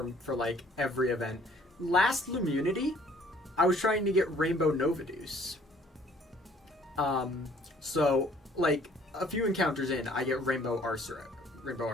like every event. Last Loomunity, I was trying to get Rainbow Novaduce. So like a few encounters in, I get Rainbow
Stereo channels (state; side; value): normal; both; correlation 0.58